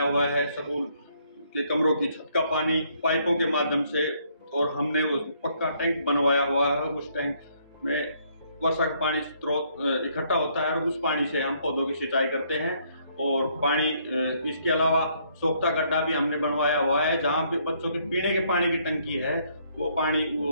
हुआ है। स्कूल के कमरों की छत का पानी पाइपों के माध्यम से, और हमने वो पक्का टैंक बनवाया हुआ है। उस टैंक में वर्षा का पानी स्रोत इकट्ठा होता है और उस पानी से हम पौधों की सिंचाई करते हैं। और पानी, इसके अलावा सोख्ता गड्ढा भी हमने बनवाया हुआ है, जहाँ पे बच्चों के पीने के पानी की टंकी है, वो पानी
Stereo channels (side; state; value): both; inverted; correlation -0.68